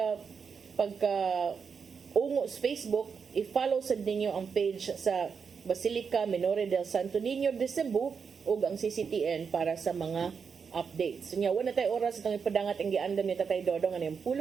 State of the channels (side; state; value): left; quieter; 6.0 dB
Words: ungo sa Facebook, i-follow sad ninyo ang page sa Basilica Minore del Santo Niño de Cebu ug ang CCTN para sa mga updates. So nya wala tay oras itong ipadangat ang giandam ni Tatay Dodong ano yung